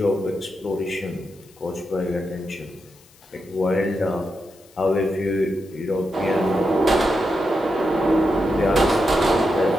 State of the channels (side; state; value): left; noise; hiss, 28 dB below the sound